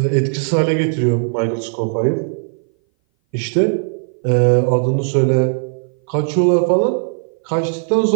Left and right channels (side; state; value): left; silent; 59 dB below the other